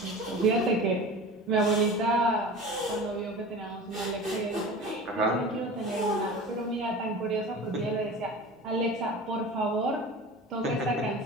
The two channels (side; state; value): both; normal; correlation 0.35